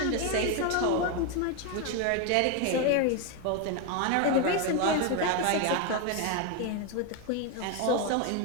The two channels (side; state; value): both; different; correlation 0.02